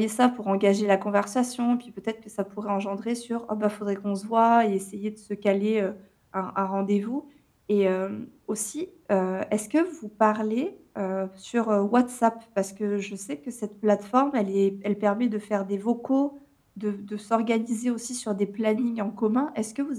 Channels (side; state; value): both; identical; correlation 1.00